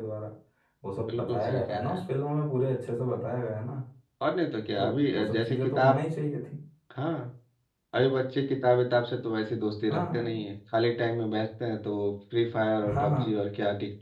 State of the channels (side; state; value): both; identical; correlation 1.00